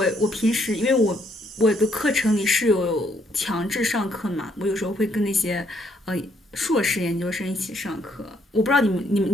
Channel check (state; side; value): normal; both; correlation 0.70